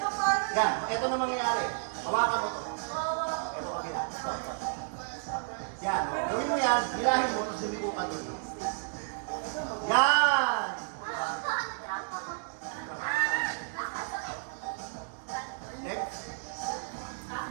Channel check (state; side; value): silent; left; digital silence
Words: Yan. Ito na mangyayari. Hawakan mo to. Ito kabila. Stop. Yan. Gawin mo yan. Hilahin mo. Tapos lumiko ka doon. Yan. Next.